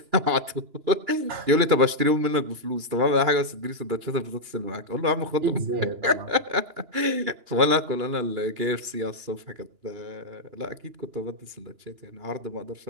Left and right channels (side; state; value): left; late; 2.9 ms